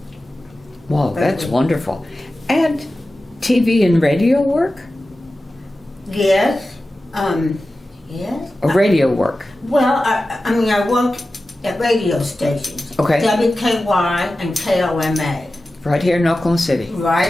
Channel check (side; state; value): both; normal; correlation 0.94